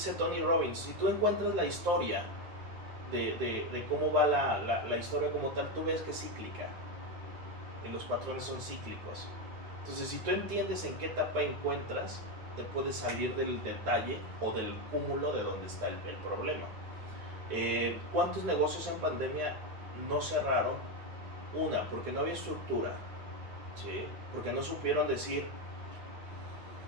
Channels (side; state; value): left; late; 9.6 ms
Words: Tony Robbins, si tú encuentras la historia de cómo va la historia como tal, tú ves que es cíclica. Y los patrones son cíclicos. Entonces, si tú entiendes en qué etapa encuentras, te puedes salir del detalle o del cúmulo de donde está el problema. ¿Cuántos negocios en pandemia no cerraron? Una, porque no había estructura, ¿sí? Porque no supieron decir,